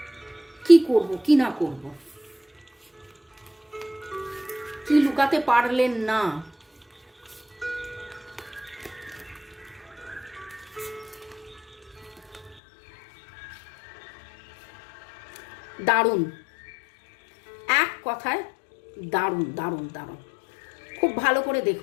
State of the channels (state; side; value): drops out; right; at 12.6 s